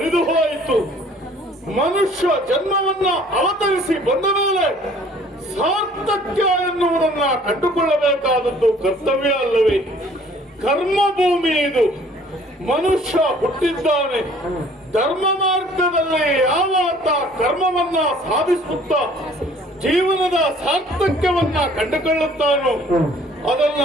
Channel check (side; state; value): both; normal; correlation 0.55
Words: ಹೋಯಿತು. ಮನುಷ್ಯ ಜನ್ಮವನ್ನ ಅವತರಿಸಿ ಬಂದ ಮೇಲೆ ಸಾರ್ಥಕ್ಯ ಎನ್ನುವುದನ್ನ ಕಂಡುಕೊಳ್ಳಬೇಕಾದದ್ದು ಕರ್ತವ್ಯ ಅಲ್ಲವೇ? ಕರ್ಮಭೂಮಿ ಇದು. ಮನುಷ್ಯ ಹುಟ್ಟಿದ್ದಾನೆ. ಧರ್ಮ ಮಾರ್ಗದಲ್ಲಿ ಯಾವಾತ ಕರ್ಮವನ್ನ ಸಾಧಿಸುತ್ತಾ ಜೀವನದ ಸಾರ್ಥಕ್ಯವನ್ನ ಕಂಡುಕೊಳ್ಳುತ್ತಾನೋ ಅದನ್ನ